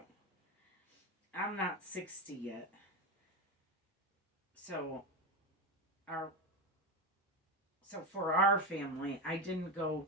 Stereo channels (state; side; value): normal; both; correlation 0.14